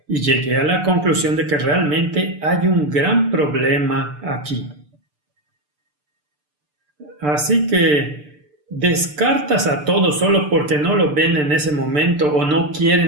y llegué a la conclusión de que realmente hay un gran problema aquí. Así que descartas a todos solo porque no lo ven en ese momento o no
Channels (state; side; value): late; left; 6.8 ms